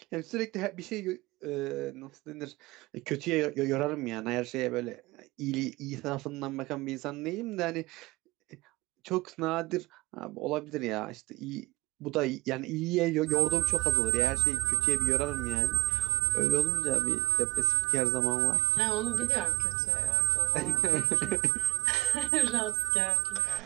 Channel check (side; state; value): left; quieter; 20.0 dB